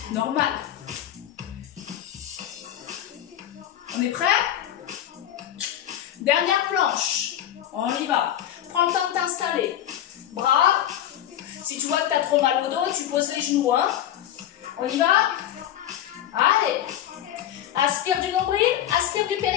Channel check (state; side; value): quieter; right; 11.5 dB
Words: Normal. On est prêt? Dernière planche. On y va. Prends le temps de t'installer. Bras. Si tu vois que tu as trop mal au dos, tu poses les genoux. Hein. On y va? Allez. Aspire du nombril, aspire du